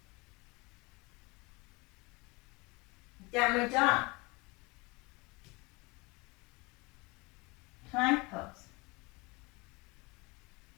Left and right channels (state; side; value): quieter; right; 26.0 dB